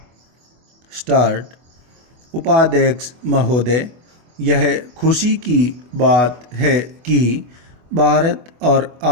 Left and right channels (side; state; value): left; late; 24 ms